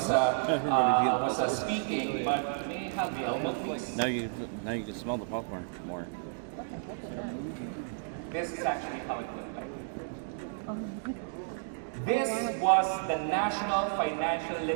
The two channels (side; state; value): left; silent; digital silence